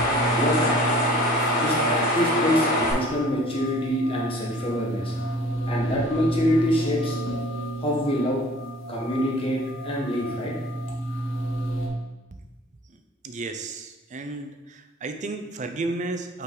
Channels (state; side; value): normal; both; correlation 0.48